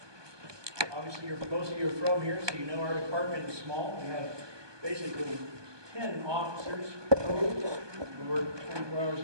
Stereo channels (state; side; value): late; left; 1.2 ms